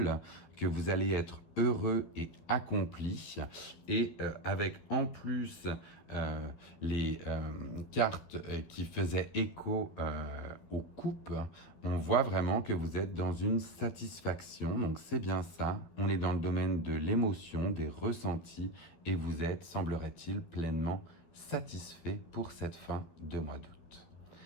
que vous allez être heureux et accompli. Et avec en plus les cartes qui faisaient écho aux coupes, on voit vraiment que vous êtes dans une satisfaction. Donc c'est bien ça, on est dans le domaine de l'émotion, des ressentis, et vous êtes, semblerait-il, pleinement satisfait pour cette fin de mois d'août.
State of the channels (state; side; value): late; right; 12 ms